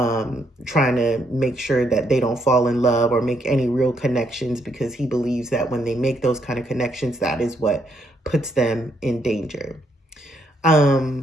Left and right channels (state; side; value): normal; both; correlation 0.74